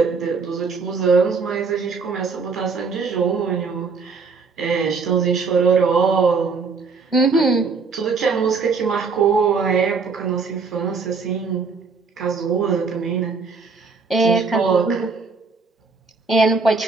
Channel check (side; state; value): left; quieter; 4.7 dB